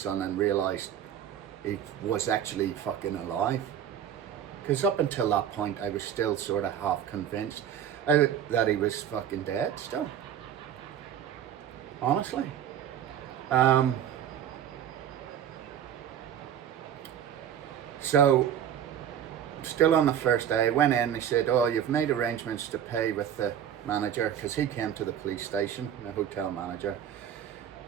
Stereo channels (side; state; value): left; quieter; 9.6 dB